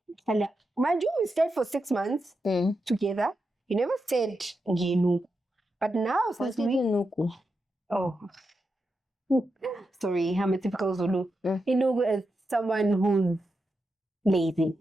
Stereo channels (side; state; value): both; normal; correlation 0.87